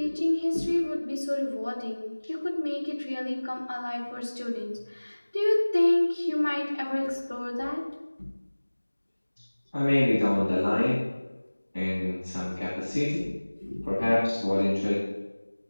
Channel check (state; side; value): inverted; both; correlation -1.00